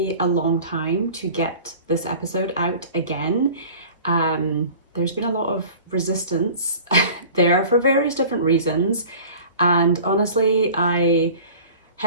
a long time to get this episode out again. There's been a lot of resistance there for various different reasons, and honestly I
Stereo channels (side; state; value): both; inverted; correlation -0.42